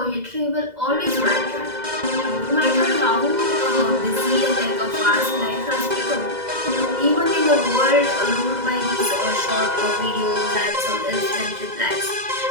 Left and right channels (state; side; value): late; left; 2.0 ms